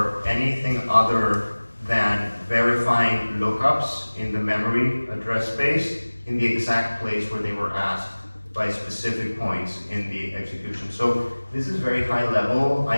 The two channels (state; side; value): inverted; both; correlation -1.00